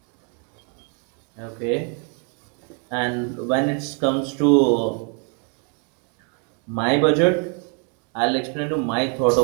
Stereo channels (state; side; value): quieter; left; 38.9 dB